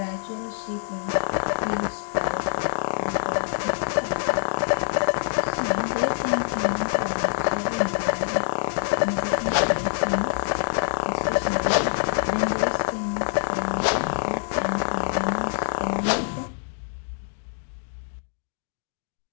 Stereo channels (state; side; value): silent; right; digital silence